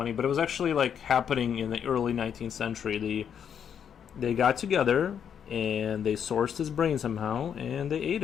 But it was actually like happening in the early 19th century. They got together and they sourced his brain somehow and they ate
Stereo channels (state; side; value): quieter; right; 8.1 dB